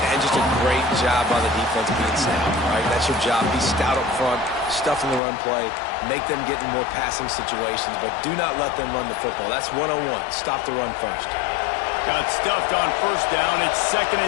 And just a great job by the defense being sound. All right, that's your job. Be stout up front, stuff in the run play, make them get in more passing situations, but do not let them run the football. That's 101. Stop the run first. Got stuffed on first down. It's 2nd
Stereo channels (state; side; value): drops out; right; at 5.2 s